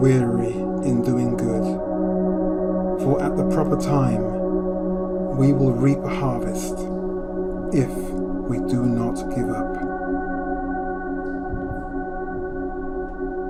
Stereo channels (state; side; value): identical; both; correlation 1.00